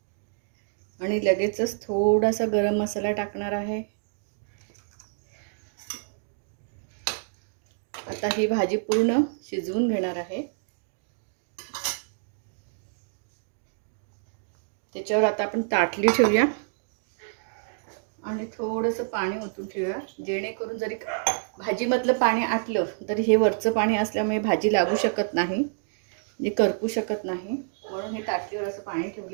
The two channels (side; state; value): left; silent; digital silence